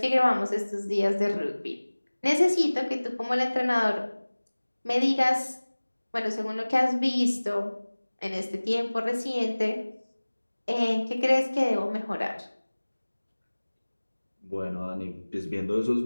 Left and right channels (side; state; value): both; inverted; correlation -1.00